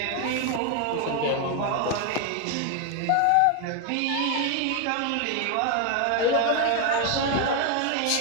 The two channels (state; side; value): different; both; correlation 0.01